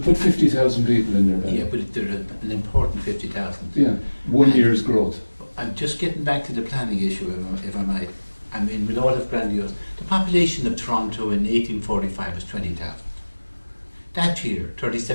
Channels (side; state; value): both; inverted; correlation -1.00